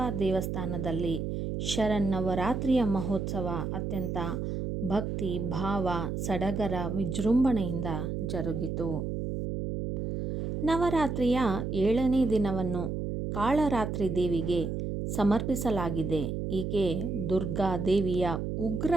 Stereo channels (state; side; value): noise; right; hum, 3 dB below the sound